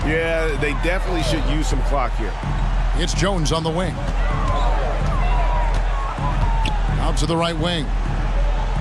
Yeah, they definitely should use some clock here. It's Jones on the wing. Out to the right wing.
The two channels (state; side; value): identical; both; correlation 1.00